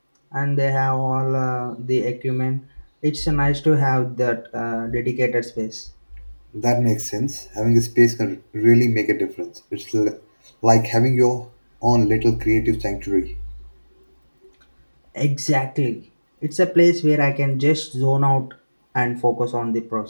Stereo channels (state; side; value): inverted; both; correlation -1.00